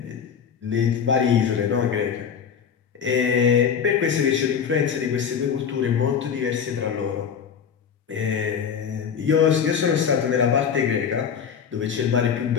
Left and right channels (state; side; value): quieter; right; 7.3 dB